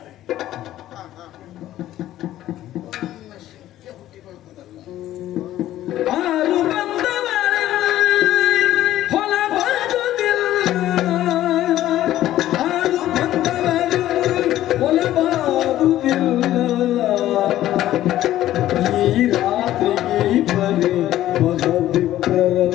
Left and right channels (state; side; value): quieter; right; 13.6 dB